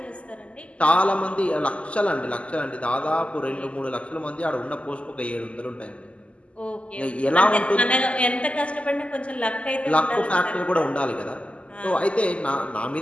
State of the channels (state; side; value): late; right; 0.059 ms